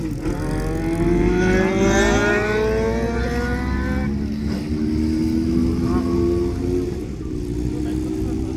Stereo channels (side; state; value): both; identical; correlation 1.00